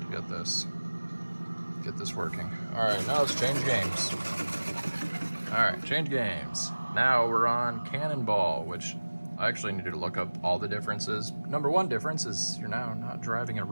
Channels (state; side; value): inverted; both; correlation -1.00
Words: get this working. All right, now let's change games. All right, change games. Now we're on Cannonball, which I actually needed to look up all the differences. Number one difference is you're now not driving a